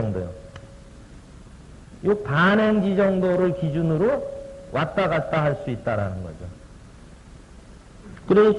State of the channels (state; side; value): identical; both; correlation 1.00